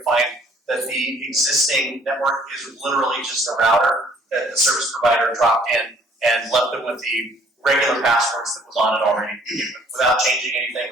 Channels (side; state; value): both; normal; correlation 0.59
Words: to find that the existing network is literally just a router that the service provider dropped in and left them with the regular passwords that was on it already, without changing anything,